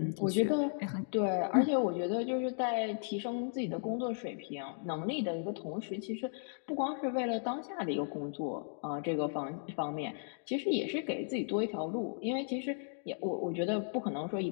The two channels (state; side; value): silent; right; digital silence